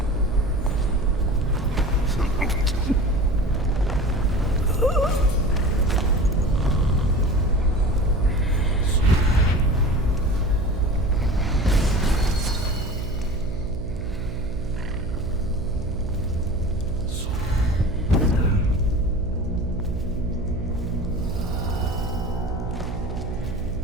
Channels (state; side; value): noise; right; hum, 7 dB below the sound